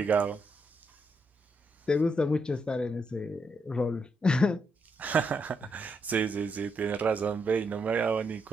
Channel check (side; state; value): both; normal; correlation 0.79